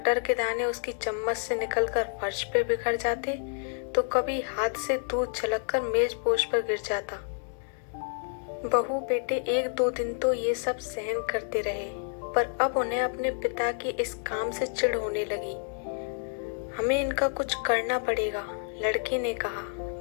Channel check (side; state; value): right; silent; 59 dB below the other